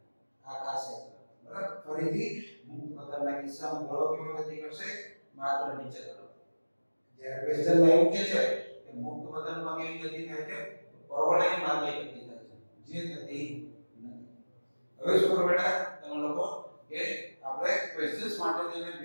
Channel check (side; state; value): both; inverted; correlation -1.00